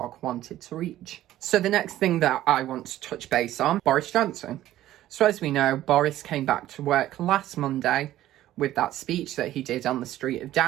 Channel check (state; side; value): quieter; left; 13.8 dB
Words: wanted to reach. So the next thing that I want to touch base on, Boris Johnson. So as we know, Boris came back to work last Monday with that speech that he did on the street of